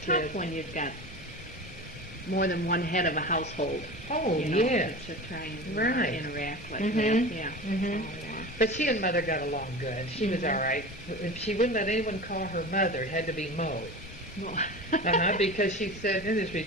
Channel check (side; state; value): both; normal; correlation 0.32